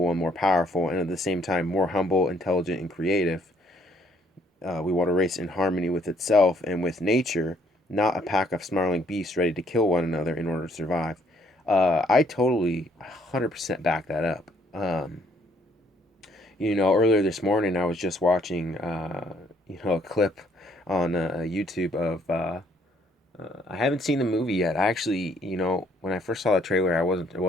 and more powerful, and at the same time more humble, intelligent, and creative. We want a race in harmony with itself and with nature, not a pack of snarling beasts ready to kill one another in order to survive. I totally 100% back that up. Earlier this morning I was just watching, a clip on YouTube of. I haven't seen the movie yet. I actually, when I first saw the trailer, I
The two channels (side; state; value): both; normal; correlation 0.66